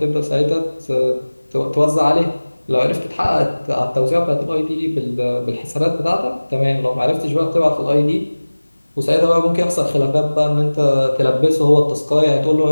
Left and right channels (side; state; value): both; inverted; correlation -1.00